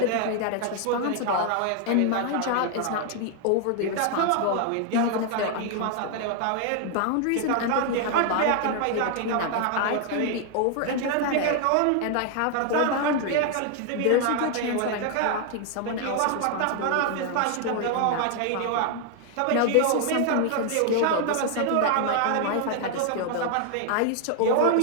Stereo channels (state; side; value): different; both; correlation 0.00